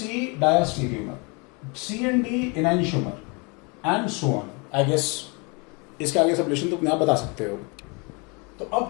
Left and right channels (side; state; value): right; quieter; 31.0 dB